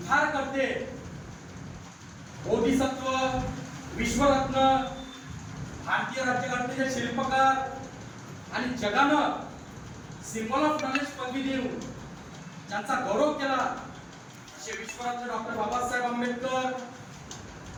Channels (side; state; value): both; identical; correlation 1.00